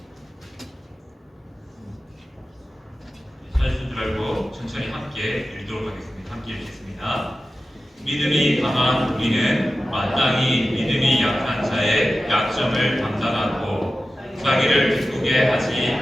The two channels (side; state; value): both; normal; correlation 0.93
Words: 찾으신 줄 알고 천천히 함께 읽도록 하겠습니다. 함께 읽겠습니다. 믿음이 강한 우리는 마땅히 믿음이 약한 자의 약점을 감당하고 자기를 기쁘게 하지